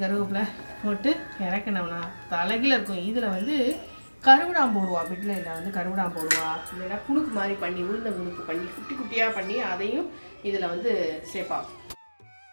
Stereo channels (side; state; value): both; inverted; correlation -1.00